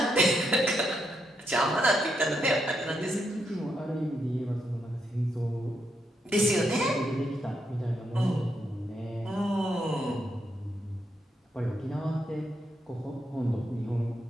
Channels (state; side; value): normal; both; correlation 0.80